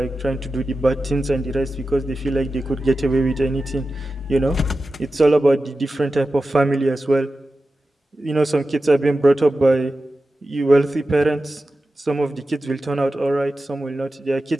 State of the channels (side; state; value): both; normal; correlation 0.93